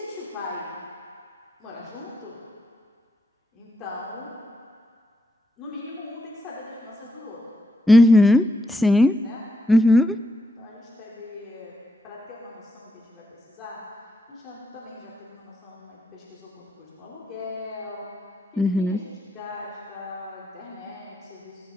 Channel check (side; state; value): both; normal; correlation 0.83